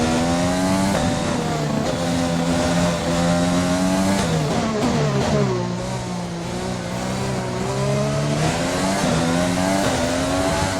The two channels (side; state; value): both; identical; correlation 1.00